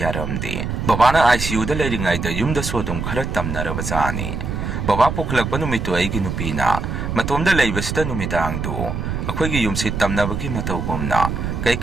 ꯕꯕꯥꯅ ICUꯗ ꯂꯩꯔꯤꯉꯩꯗ ꯌꯨꯝꯗꯁꯨ ꯑꯗꯨꯝ ꯈꯔ ꯇꯝꯅꯔꯕꯖꯥꯠꯅꯤ ꯕꯕꯥ ꯄꯨꯈꯠꯂꯛꯄ ꯅꯨꯃꯤꯠꯇꯨ ꯑꯩꯒꯤ ꯅꯨꯄꯤꯅ ꯃꯇꯣꯝꯗ ꯂꯩꯕꯁꯤꯗ ꯅꯨꯃꯤꯗꯥꯡꯗꯨ ꯑꯩꯈꯣꯏꯒꯤ ꯌꯨꯝꯁꯤ ꯇꯝꯅꯕꯒꯤ ꯃꯇꯧꯒꯨꯝꯅ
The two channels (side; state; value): right; noise; rumble, 3 dB below the sound